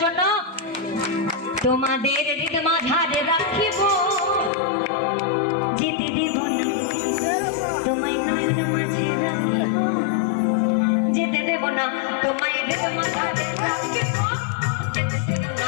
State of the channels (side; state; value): right; drops out; at 4.5 s